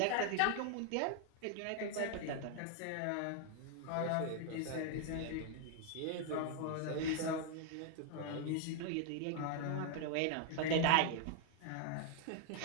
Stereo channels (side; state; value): both; different; correlation 0.00